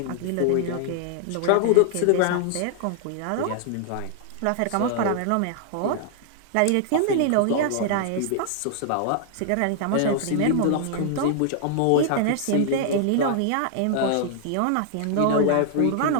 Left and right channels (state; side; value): different; both; correlation -0.01